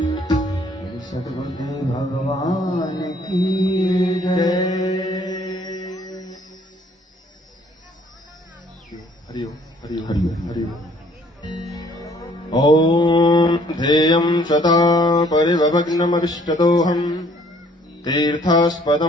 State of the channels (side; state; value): both; normal; correlation 0.60